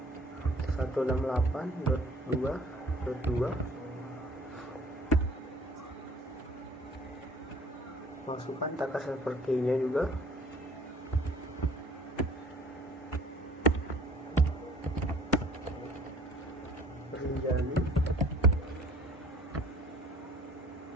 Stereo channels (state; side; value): normal; both; correlation 0.53